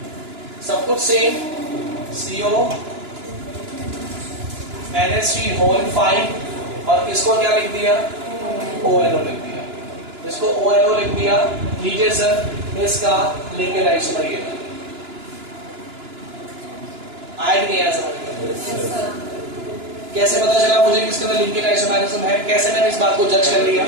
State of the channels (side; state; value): left; late; 2.9 ms